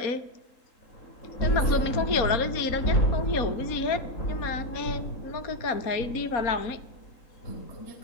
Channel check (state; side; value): late; right; 4.2 ms